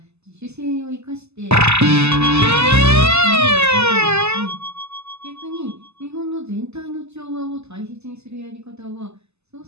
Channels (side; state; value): left; late; 0.80 ms